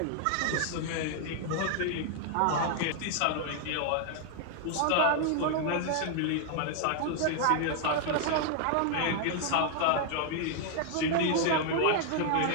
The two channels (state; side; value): different; both; correlation 0.00